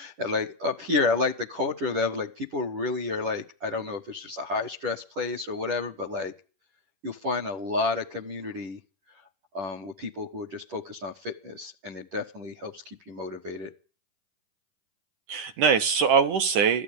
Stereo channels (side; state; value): left; late; 10 ms